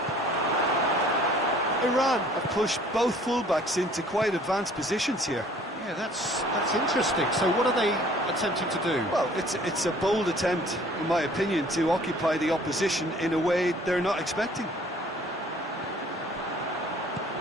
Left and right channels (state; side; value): normal; both; correlation 0.54